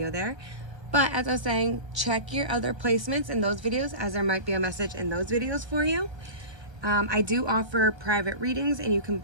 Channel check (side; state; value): left; late; 1.3 ms